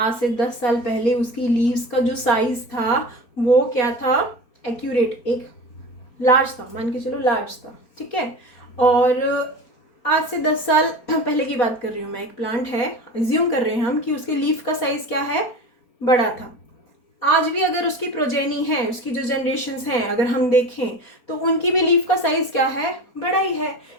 से 10 साल पहले उसकी लीव्स का जो साइज था वो क्या था, एक्यूरेट, एक लार्ज था, मान के चलो लार्ज था, ठीक है। और आज से 10 साल पहले की बात कर रही हूँ मैं, एक प्लांट है, एज्यूम कर रहे हैं हम कि उसके लीफ का साइज क्या है, बड़ा था। आज भी अगर उसकी प्रोजेनी है, उसकी जो जनरेशन्स हैं अगर हम देखें तो उनकी भी लीफ का साइज क्या है, बड़ा ही है।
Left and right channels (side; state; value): right; late; 4.3 ms